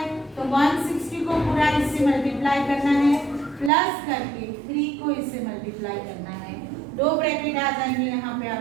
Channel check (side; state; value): left; drops out; at 3.7 s